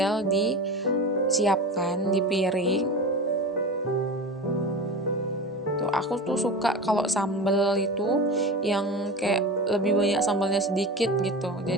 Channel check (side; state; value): both; normal; correlation 0.29